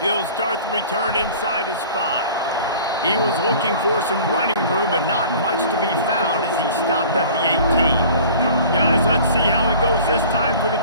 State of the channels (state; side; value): inverted; both; correlation -0.45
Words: He'll start the return inside his 5. He was looking for some running room, but not much to be found as he stopped at the 18. Guys, let's see how it goes this time for the